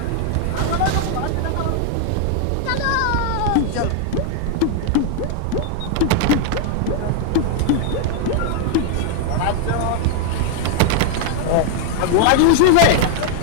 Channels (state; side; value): different; both; correlation 0.00